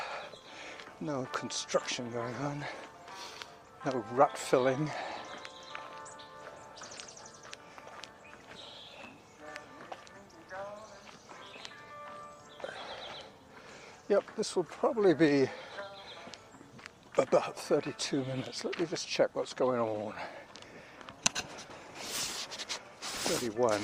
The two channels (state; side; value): identical; both; correlation 1.00